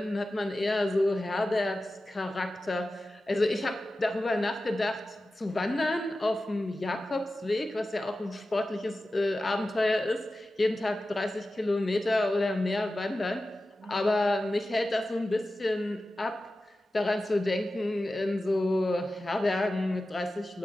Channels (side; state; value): both; normal; correlation 0.94